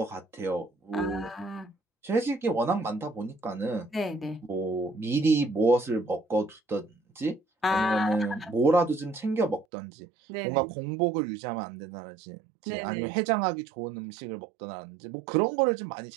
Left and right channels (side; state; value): left; drops out; at 9.7 s